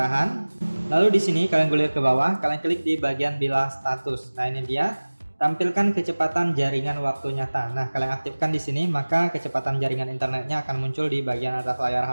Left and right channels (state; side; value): inverted; both; correlation -1.00